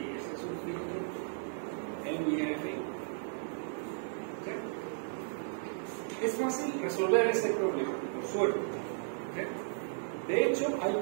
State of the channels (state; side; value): silent; left; 55 dB below the other